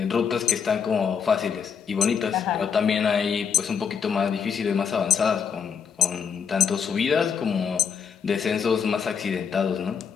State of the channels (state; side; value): quieter; right; 6.8 dB